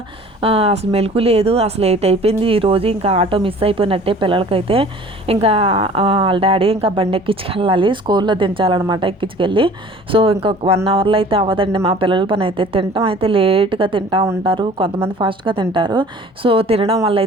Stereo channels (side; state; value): both; normal; correlation 0.47